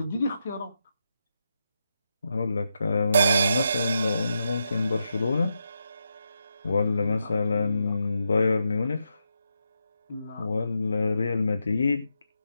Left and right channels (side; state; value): both; inverted; correlation -0.85